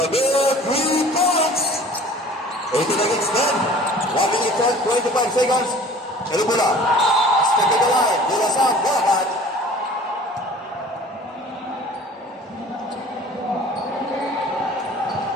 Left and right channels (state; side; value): normal; both; correlation 0.46